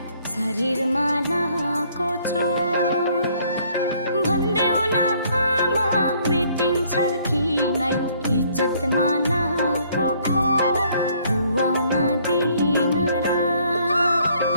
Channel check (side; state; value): both; inverted; correlation -0.64